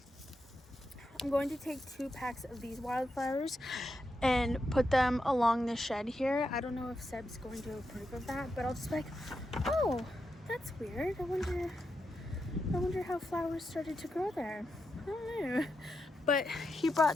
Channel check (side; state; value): both; normal; correlation 0.86